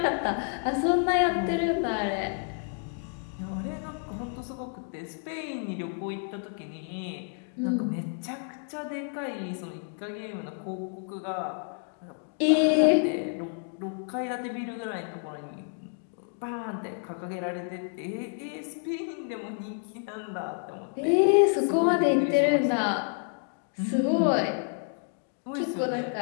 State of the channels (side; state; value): right; silent; 55 dB below the other